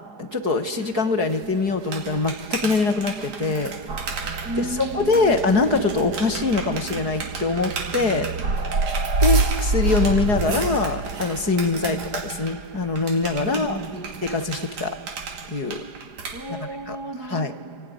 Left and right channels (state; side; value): late; left; 4.7 ms